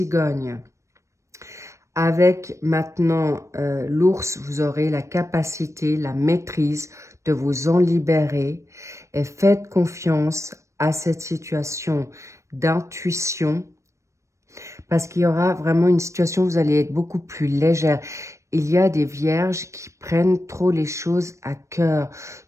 avec maintenant l'ours, vous aurez la capacité, la maîtrise de vous en libérer et faites confiance à cette situation d'intuition parce qu'il y aura vraiment une situation où vous allez être beaucoup plus légère. Il y a des vierges qui prennent trop les choses à cœur,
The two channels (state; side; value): late; left; 0.15 ms